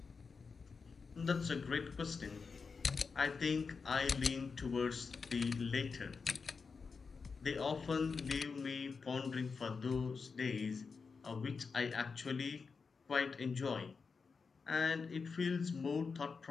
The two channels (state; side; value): quieter; right; 5.0 dB